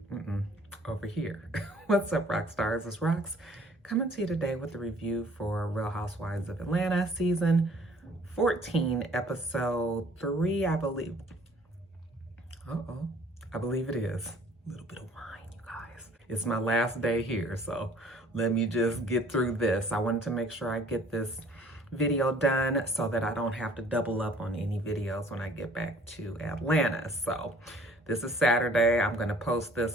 over here. What's up, rock stars? It's Rox coming to you today with the review for Real Housewives of Atlanta season 14, episode 3, I believe. I believe it is. A little bit of wine, you guys. It's my last day here, so let me just get through this. I wanted to make sure I get this video done so that I don't have to double up on any videos when I get back to Atlanta. So this is Saturday. I'm gonna post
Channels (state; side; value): normal; both; correlation 0.55